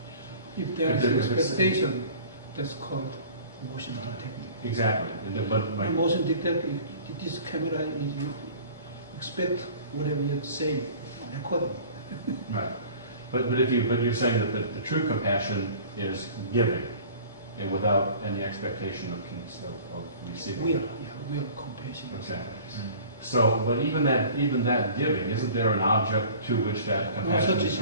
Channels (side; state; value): both; inverted; correlation -0.45